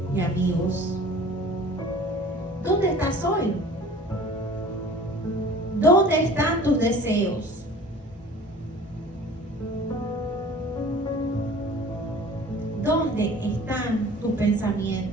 y amigos? ¿Dónde estás hoy? ¿Dónde están tus deseos? ¿Dónde están tus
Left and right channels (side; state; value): both; normal; correlation 0.45